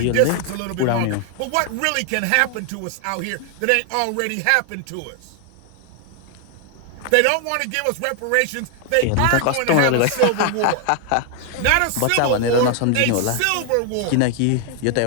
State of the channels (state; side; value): different; both; correlation 0.00